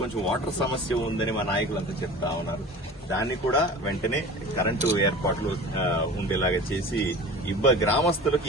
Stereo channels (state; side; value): normal; both; correlation 0.38